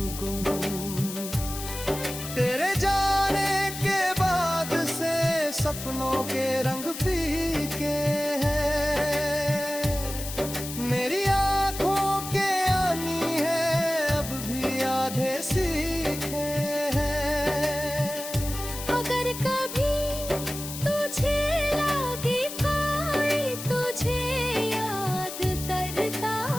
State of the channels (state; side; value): noise; left; hiss, 9 dB below the sound